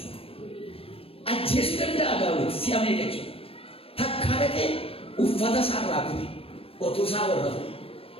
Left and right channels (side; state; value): right; late; 0.28 ms